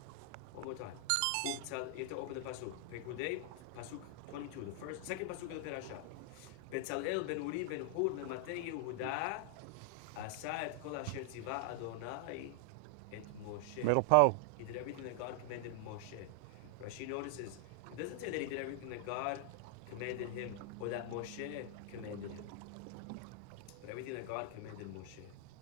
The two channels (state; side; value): different; both; correlation 0.00